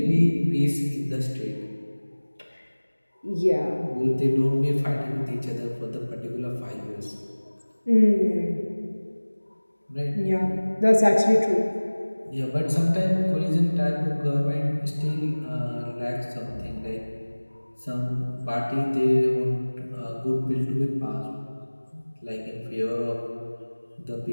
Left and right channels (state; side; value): inverted; both; correlation -1.00